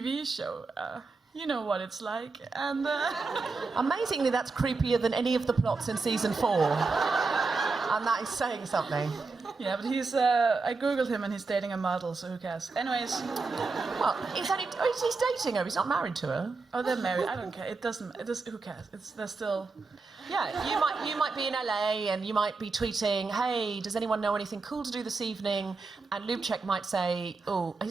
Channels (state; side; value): quieter; left; 4.1 dB